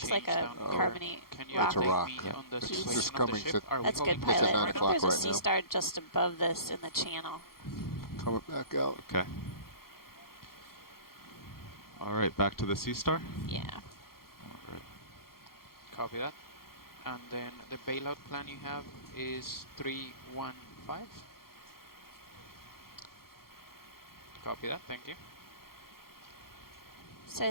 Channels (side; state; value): right; late; 0.93 ms